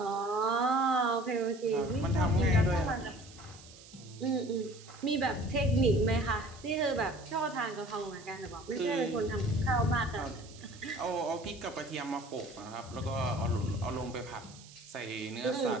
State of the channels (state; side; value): noise; right; hiss, 20 dB below the sound